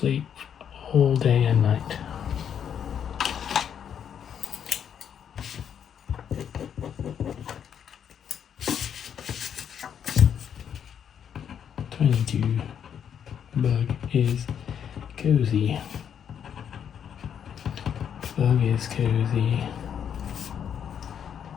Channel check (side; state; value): right; quieter; 8.4 dB